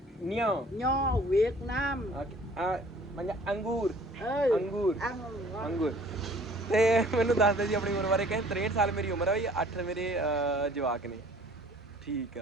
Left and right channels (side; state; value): both; normal; correlation 0.53